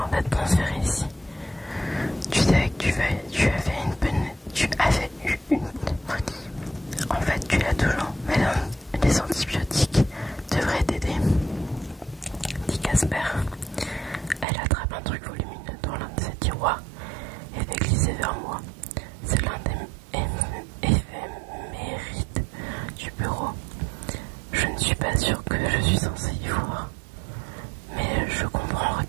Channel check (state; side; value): drops out; left; at 14.5 s